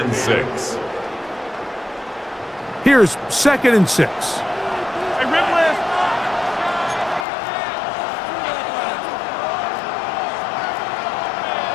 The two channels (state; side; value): drops out; right; at 7.2 s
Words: 6. Here's 2nd and 6. Hey, Ripley!